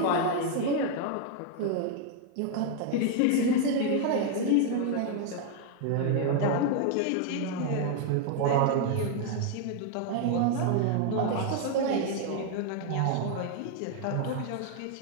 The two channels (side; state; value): both; different; correlation 0.00